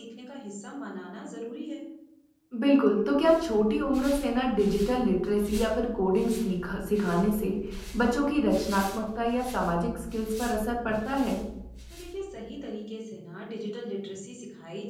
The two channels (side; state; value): both; identical; correlation 1.00